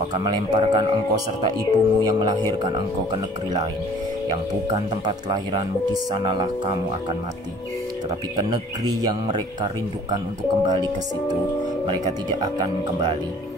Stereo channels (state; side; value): normal; both; correlation 0.52